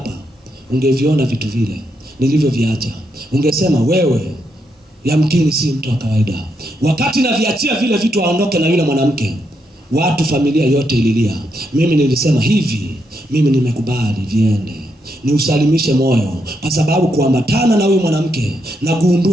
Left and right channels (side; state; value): both; normal; correlation 0.80